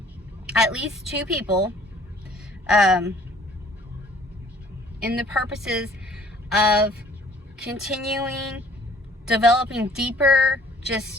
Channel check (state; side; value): normal; both; correlation 0.56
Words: at least two people in the purposes of continuing, developing deeper,